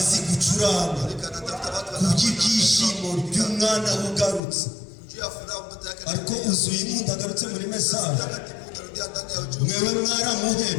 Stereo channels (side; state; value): right; drops out; at 4.4 s